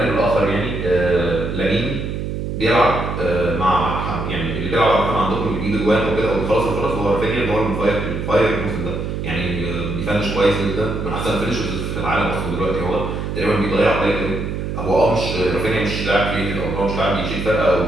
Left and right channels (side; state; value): right; noise; hum, 4 dB below the sound